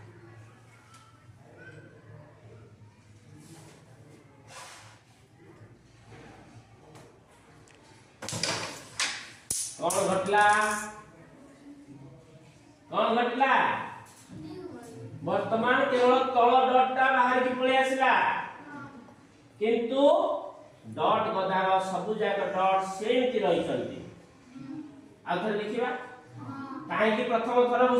कौन घटला वर्तमान केवल तळ डॉटटा बाहर की पळे आसिला किंतु डॉट गदार सब जाक डॉट सेमति रही चलती आथर देखिबा काहे की प्रथम थर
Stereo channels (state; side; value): identical; both; correlation 1.00